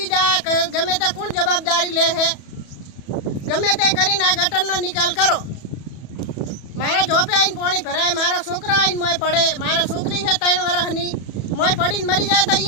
જાય, ગમે તે કોણ જવાબદારી લે છે? ગમે તે કરીને આ ગટરનો નિકાલ કરો। મારા જોપે આવીને પાણી ભરાય, મારા છોકરા આવીને મોય પડે, મારા છોકરી છે 3 વર્ષની મોય પડીને મરી જાય તો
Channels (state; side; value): late; right; 34 ms